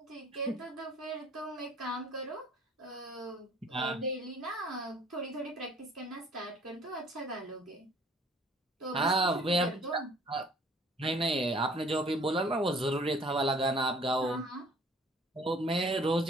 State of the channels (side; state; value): both; normal; correlation 0.55